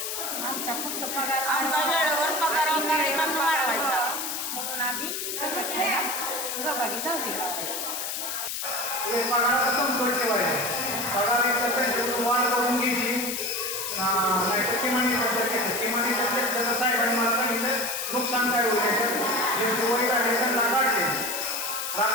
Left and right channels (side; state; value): left; noise; hiss, 3 dB below the sound